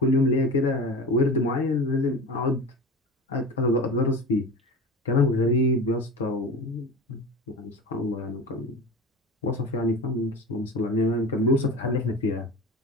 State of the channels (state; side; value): normal; both; correlation 0.32